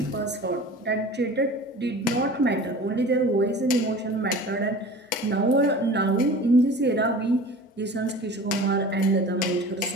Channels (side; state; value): both; normal; correlation 0.40